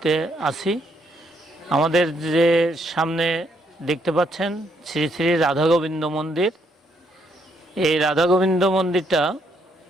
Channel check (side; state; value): both; normal; correlation 0.73